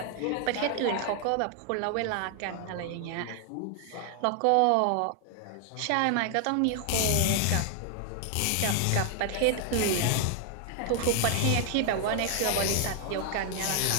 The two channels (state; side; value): different; both; correlation 0.00